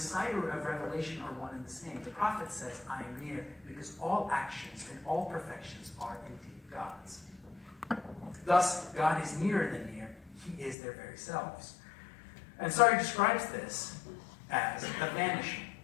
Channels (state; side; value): drops out; right; at 10.8 s